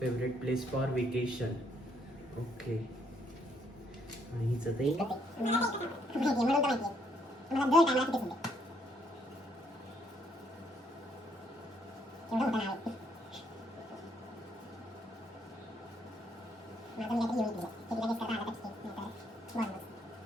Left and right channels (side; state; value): both; normal; correlation 0.70